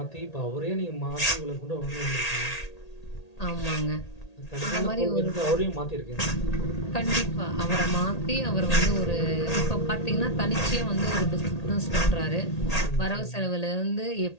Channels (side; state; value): right; late; 1.8 ms